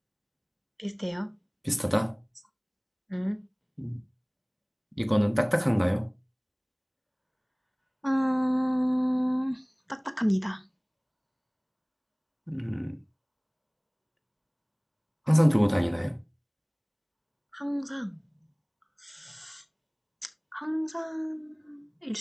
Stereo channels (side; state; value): both; identical; correlation 1.00